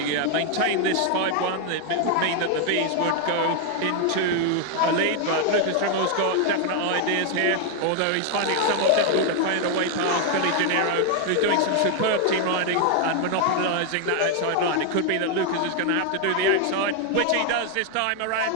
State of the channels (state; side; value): different; both; correlation 0.00